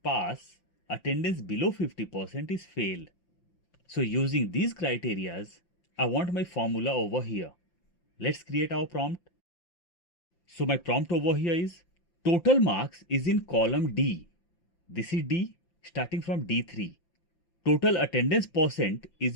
Attendance below 50% is fail. So using these criterias, I want my formula over here. Let's create our prompt. So my prompt over here is total marks is in column D. This is D starting from D3. Total attendance percent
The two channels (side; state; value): right; late; 5.9 ms